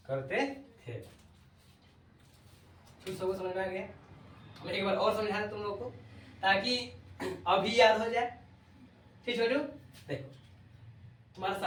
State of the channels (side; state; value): both; identical; correlation 1.00